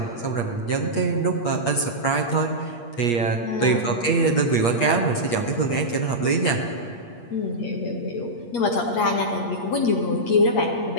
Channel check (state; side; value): late; right; 8.5 ms